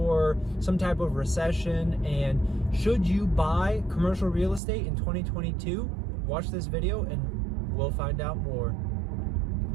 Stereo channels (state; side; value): drops out; left; at 4.6 s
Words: some type of recession. And should you buy commercial real estate in 2022? Watch this video and we'll find out more.